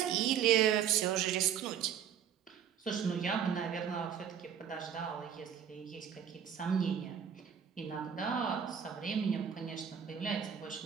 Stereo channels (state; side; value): quieter; left; 8.5 dB